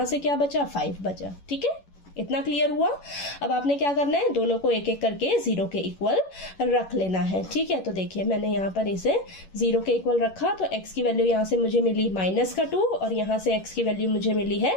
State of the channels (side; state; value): right; late; 11 ms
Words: से क्या बचा, 5 बचा, ठीक है। इतना क्लियर हुआ। अब आपने क्या करना है, दोनों को एक एक करके 0 के इक्वल रख लेना है, ठीक है। तो देखिए मैंने यहाँ पर इसे 0 के इक्वल रखा, तो x की वैल्यू यहाँ से मुझे मिली -2 और यहाँ से x की वैल्यू मुझे मिली